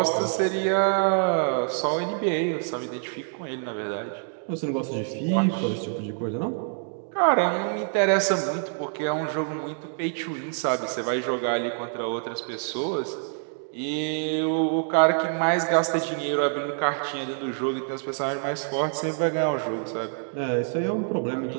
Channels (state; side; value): silent; left; 61 dB below the other